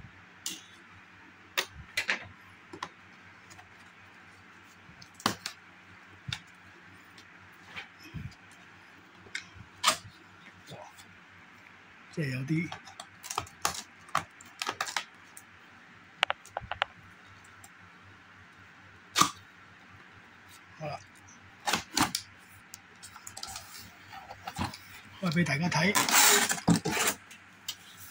即係有啲好啦，開俾大家睇。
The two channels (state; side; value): identical; both; correlation 1.00